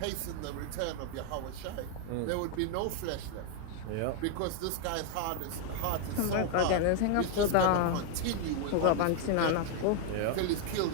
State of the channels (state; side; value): different; both; correlation 0.01